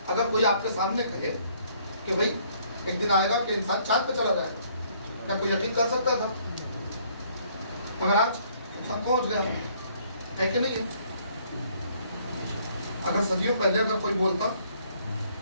اگر کوئی آپ کے سامنے کہے کہ بھائی ایک دن آئے گا کہ انسان چاند پہ چلا جائے گا, کیا کوئی یقین کر سکتا تھا؟ مگر آج انسان پہنچ گیا ہے کہ نہیں ہے؟ اگر صدیوں پہلے اگر کوئی بولتا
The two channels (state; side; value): inverted; both; correlation -0.64